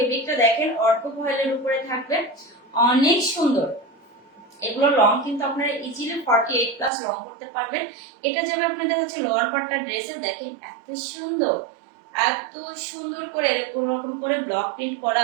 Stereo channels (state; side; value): drops out; left; at 6.9 s